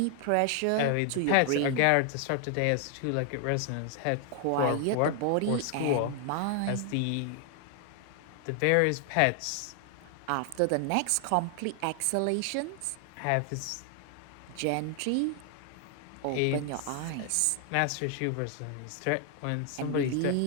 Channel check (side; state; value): both; different; correlation 0.00